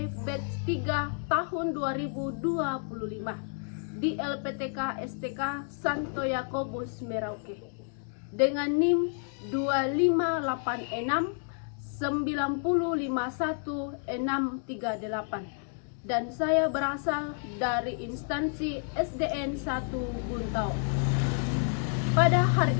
Batch 3 tahun 2025 di LPTK STK Santo Yakobus Merauke dengan NIM 2586 9051638. Dan saya berasal dari instansi SDN 1 Buntau. Pada hari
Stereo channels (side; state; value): right; silent; 58 dB below the other